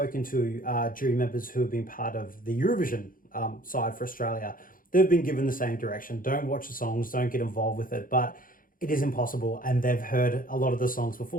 to jury members who have been part of the Eurovision side for Australia, they've been given the same direction. Don't watch the songs, don't get involved with it. But it is impossible, and they've heard a lot of the songs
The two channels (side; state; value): right; late; 0.40 ms